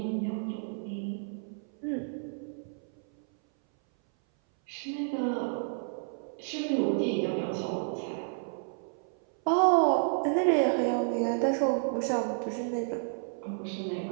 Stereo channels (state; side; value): silent; left; 57 dB below the other